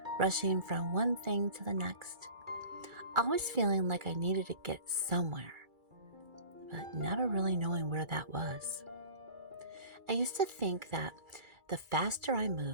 rushing from one thing to the next, always feeling like I needed to get somewhere, but never really knowing where that was. I used to think that the faster I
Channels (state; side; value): late; left; 2.3 ms